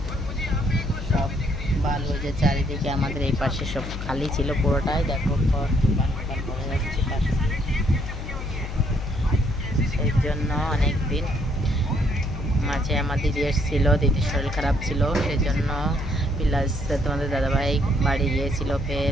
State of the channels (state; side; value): noise; left; hum, 6 dB below the sound